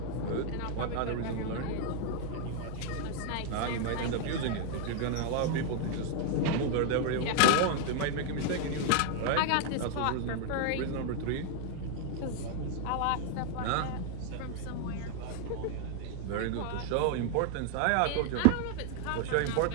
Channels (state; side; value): different; both; correlation 0.00